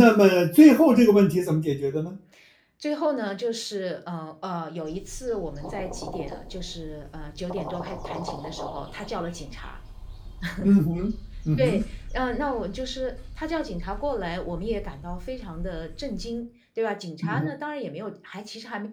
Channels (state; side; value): identical; both; correlation 1.00